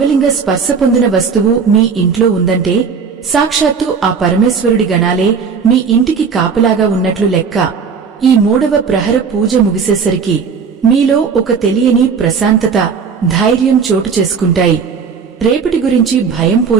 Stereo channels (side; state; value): left; quieter; 5.9 dB